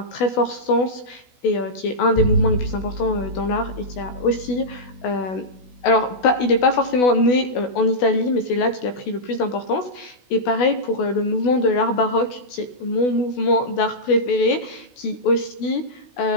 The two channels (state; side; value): late; right; 16 ms